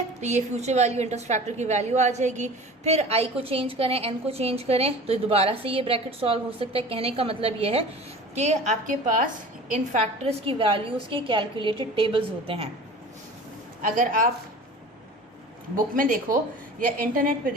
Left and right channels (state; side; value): normal; both; correlation 0.39